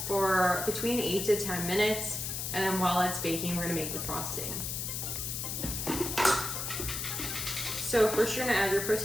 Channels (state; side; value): noise; left; hiss, 3 dB below the sound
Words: for between 8 to 10 minutes, and then while it's baking, we're gonna make the frosting. So first you're gonna add your